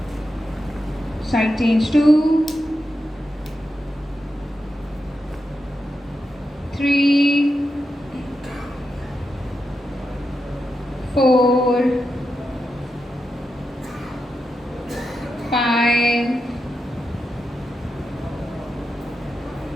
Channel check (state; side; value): normal; both; correlation 0.87